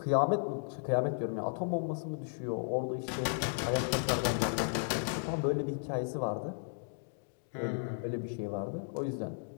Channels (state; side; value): silent; right; digital silence